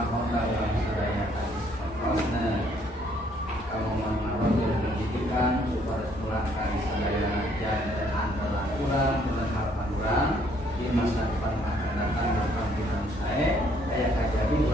dalam sadaya prosesnya, kamu mau pendidikan supaya pulang kali sadaya dan antara kurang dengan harapan kurang di masa depan akan datang akan kita saya kayak jadi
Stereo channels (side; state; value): both; normal; correlation 0.66